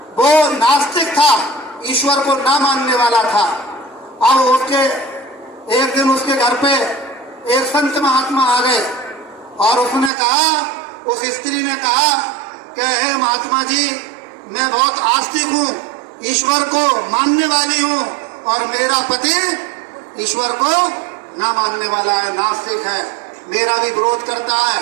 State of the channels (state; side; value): drops out; left; at 10.1 s